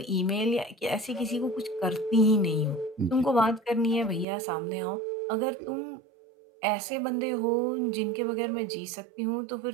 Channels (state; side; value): drops out; left; at 4.2 s